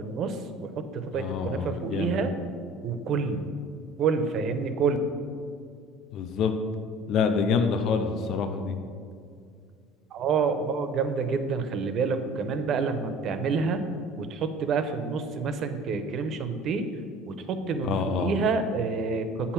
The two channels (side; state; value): both; normal; correlation 0.46